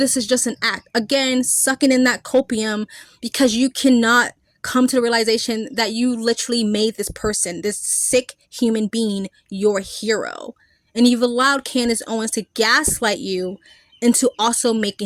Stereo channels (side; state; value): both; identical; correlation 1.00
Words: is just an act. Again, sucking in that copium because you cannot come to the realization that you literally made this person, this sick human being, your hero. And you've allowed Candace Owens to gaslight you into also